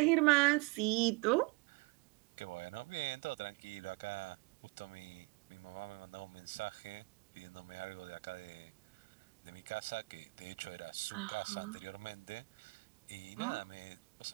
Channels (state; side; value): quieter; left; 27.7 dB